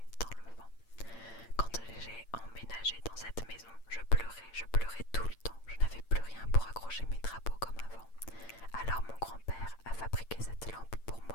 dans le vent. Quand j'ai emménagé dans cette maison, je pleurais tout le temps. Je n'avais plus rien pour accrocher mes drapeaux comme avant. Alors mon grand-père a fabriqué cette lampe pour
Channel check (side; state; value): right; late; 8.8 ms